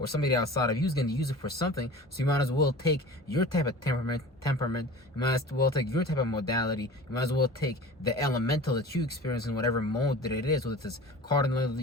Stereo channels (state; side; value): normal; both; correlation 0.39